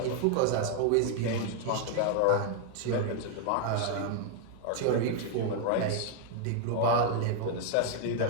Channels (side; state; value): both; different; correlation 0.00